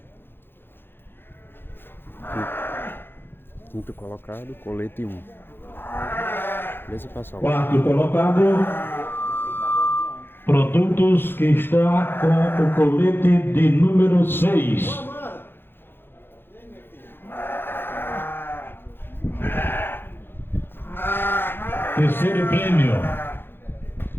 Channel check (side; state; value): right; late; 0.10 ms